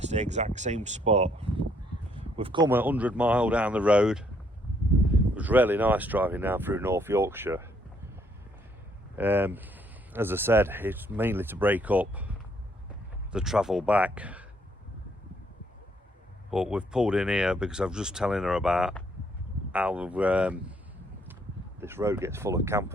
the exact same spot. We've come 100 miles down the road. It was really nice driving down through North Yorkshire. As I said, it's mainly to break up the travel back, but we've pulled in here because I was just telling her about how this road gets full of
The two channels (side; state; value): both; normal; correlation 0.69